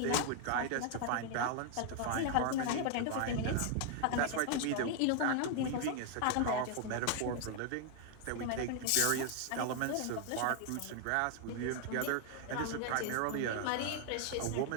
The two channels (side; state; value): both; different; correlation 0.00